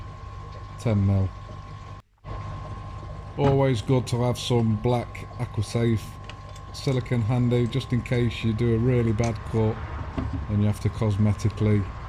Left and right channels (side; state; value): both; identical; correlation 1.00